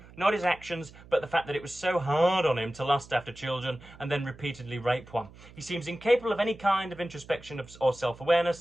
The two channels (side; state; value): right; noise; hum, 21 dB below the sound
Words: not his actions, but the fact that it was so hard on him to lust after children and then repeatedly rape one. He seems incapable of any kind of introspection or